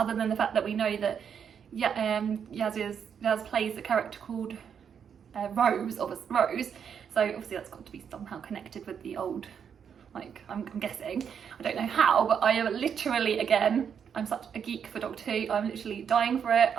than the fact that we know that Yaz plays a character called Rose. So obviously that's got to be somehow connected with the old. Like, I'm guessing. I don't know how, but I am literally, again, I'm such a geek for Doctor Who. I'm literally dying for it.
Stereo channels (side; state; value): left; quieter; 7.6 dB